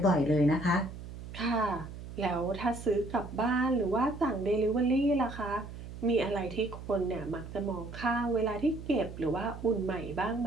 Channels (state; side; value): noise; right; hum, 12 dB below the sound